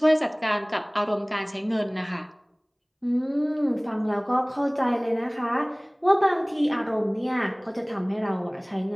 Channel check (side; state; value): both; identical; correlation 1.00